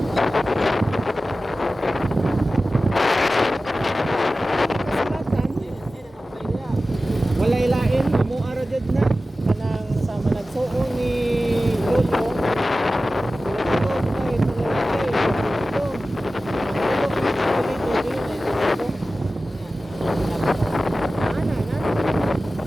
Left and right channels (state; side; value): normal; both; correlation 0.95